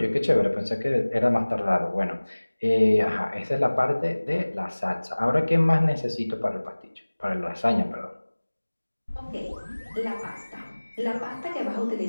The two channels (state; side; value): inverted; both; correlation -1.00